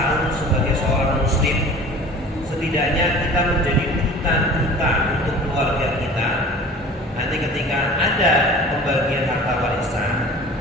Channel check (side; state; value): both; normal; correlation 0.42